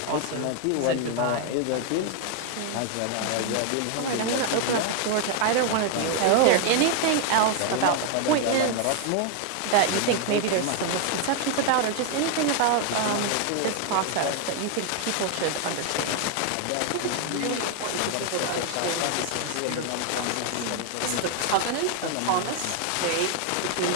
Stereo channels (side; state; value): both; different; correlation 0.01